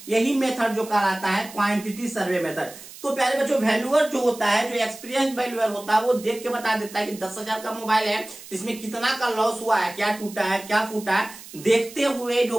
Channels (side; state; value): right; noise; hiss, 17 dB below the sound